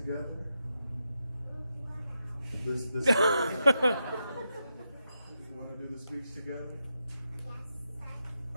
This you want to do the speech together? Yes,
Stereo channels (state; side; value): inverted; both; correlation -0.86